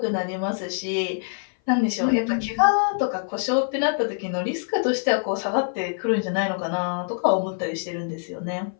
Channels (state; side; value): silent; right; 57 dB below the other